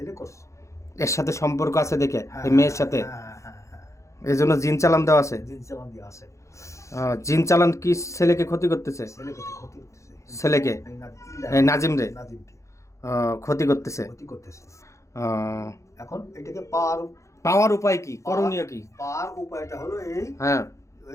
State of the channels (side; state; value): right; late; 0.15 ms